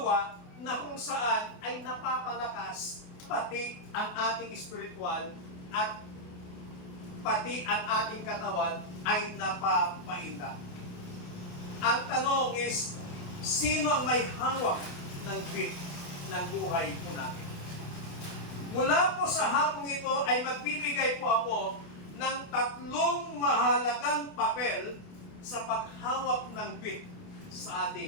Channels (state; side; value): late; right; 28 ms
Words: na kung saan ay napapalakas pati ang ating spiritual at pati ang ating katawan ay napapainda. Ang tanong is, sino ang may hawak ng beat ng buhay po natin? Mula po sa hapong ito ay magbibigay po ako ng 3 mahalagang papel sa paghawak ng beat sa